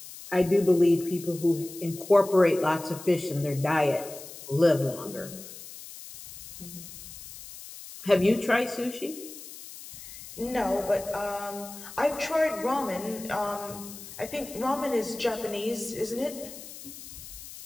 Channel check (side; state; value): left; noise; hiss, 14 dB below the sound